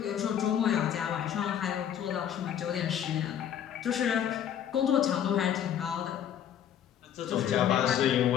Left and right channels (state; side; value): quieter; right; 9.7 dB